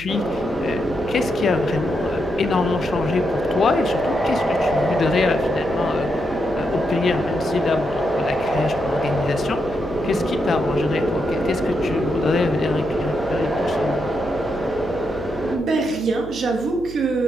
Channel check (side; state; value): right; noise; hum, 16 dB below the sound